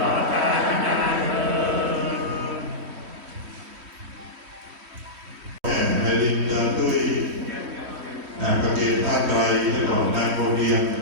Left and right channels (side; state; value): left; late; 3.1 ms